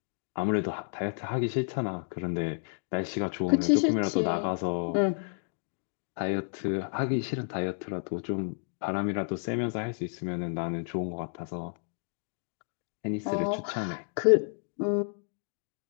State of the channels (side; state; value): right; silent; digital silence